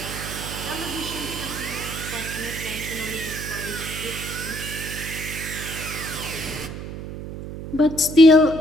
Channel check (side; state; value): right; noise; hum, 9 dB below the sound